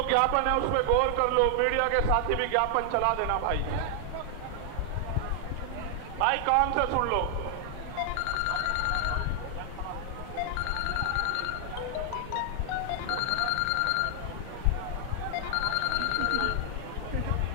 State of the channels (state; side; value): different; both; correlation 0.00